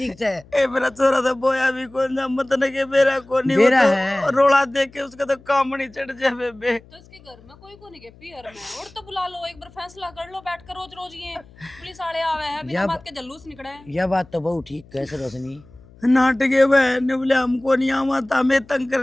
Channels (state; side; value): noise; left; hum, 25 dB below the sound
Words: से ए मेरा चोरा तो बोया भी कौन जा मत न के बेरा को नहीं बेरा वो है। तो रोड़ा देख के उसका तो काम नहीं चढ़ जाए बेबे। तो इसके घर में कोई को नहीं के पियर में और तो बुला लो एक बार फैसला कर लो बैठ कर रोज रोज ये पुलिस वाले आवे हैं बिना या- बात के जल्लूस निकले हैं। यह बात तो बहुत ठीक कैसे रोशनी नाटके बहन ने बोले हमको नहीं आवा था हमें तंग कर